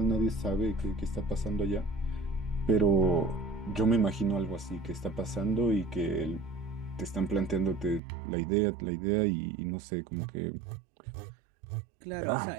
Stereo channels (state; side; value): drops out; left; at 8.0 s